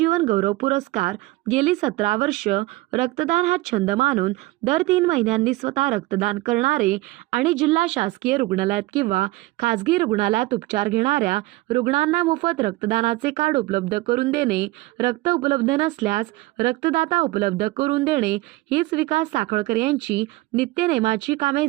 गौरव पुरस्कार गेली 17 वर्ष रक्तदान हा छंद मानून दर 3 महिन्यांनी स्वतः रक्तदान करणारे आणि जिल्हा शासकीय रुग्णालयात किंवा खासगी रुग्णालयात उपचार घेणाऱ्या रुग्णांना मोफत रक्तदानाचे कार्ड उपलब्ध करून देणे, रक्त उपलब्ध नसल्यास रक्तदाता उपलब्ध करून देणे हीच विकास साखळकर यांची नित्यनेमाची कामे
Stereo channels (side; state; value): left; quieter; 19.7 dB